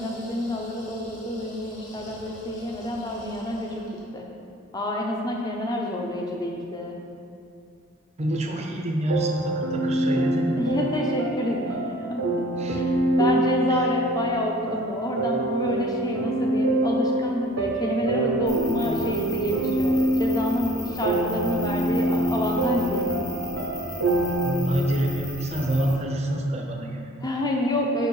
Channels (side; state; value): both; normal; correlation 0.51